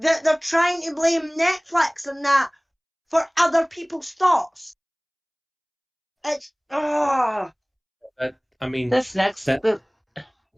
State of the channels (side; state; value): both; identical; correlation 1.00